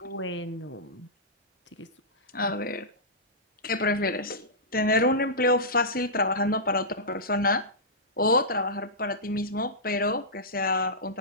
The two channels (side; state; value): both; normal; correlation -0.15